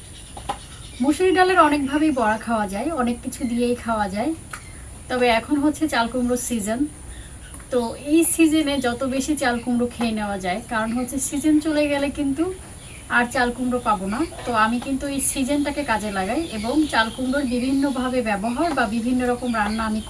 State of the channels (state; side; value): identical; both; correlation 1.00